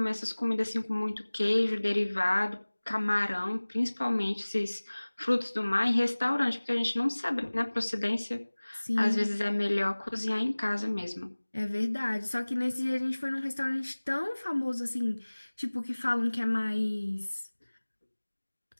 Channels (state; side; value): inverted; both; correlation -1.00